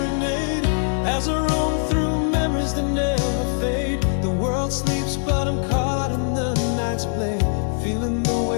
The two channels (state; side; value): silent; right; 59 dB below the other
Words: as I roam through memories that never fade. The world sleeps but I'm caught in the night's play, feeling the